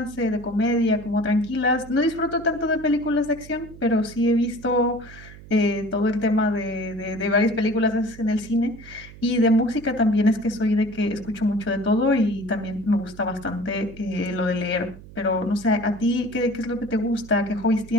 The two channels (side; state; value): right; noise; hum, 18 dB below the sound